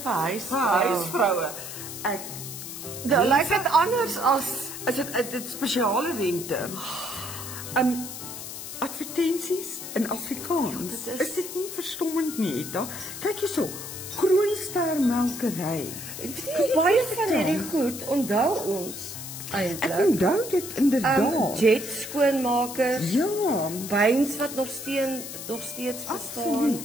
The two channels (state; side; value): noise; left; hiss, 9 dB below the sound